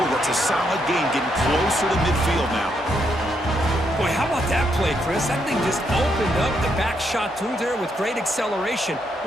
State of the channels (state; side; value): normal; both; correlation 0.77